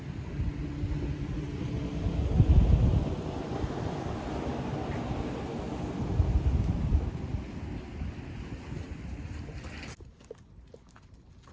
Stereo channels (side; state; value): both; identical; correlation 1.00